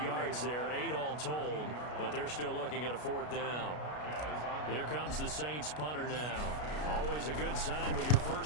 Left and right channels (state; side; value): late; right; 33 ms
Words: yards there, 8 all told, but they're still looking at a 4th down. Here comes the Saints punter now. Always a good sign when your